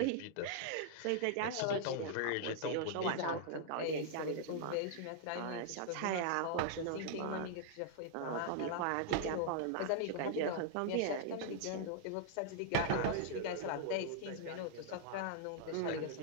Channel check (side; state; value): both; different; correlation -0.01